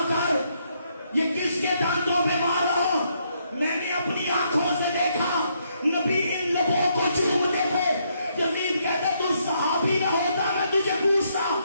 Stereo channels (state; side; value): inverted; both; correlation -0.74